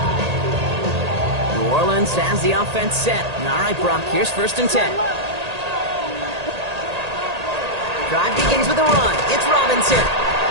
New Orleans has the offense set. All right, Brock, here's first and 10. Drive begins with a run. It's Robinson.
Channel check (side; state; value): left; late; 1.8 ms